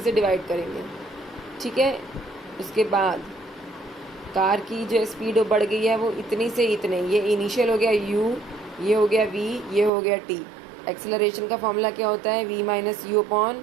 से डिवाइड करेंगे, ठीक है। उसके बाद कार की जो स्पीड बढ़ गई है वो इतनी से इतने, ये इनिशियल हो गया U, ये हो गया V, ये हो गया T। एक्सेलरेशन का फॉर्मूला क्या होता है? V minus U upon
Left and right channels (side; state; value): left; drops out; at 9.9 s